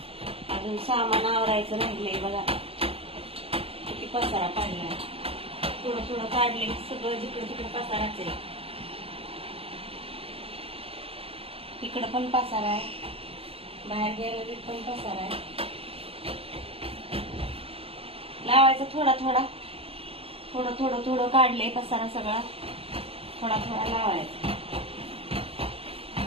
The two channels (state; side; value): late; left; 0.28 ms